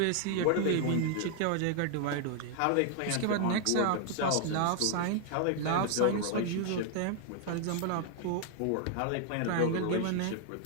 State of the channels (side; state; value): both; different; correlation 0.00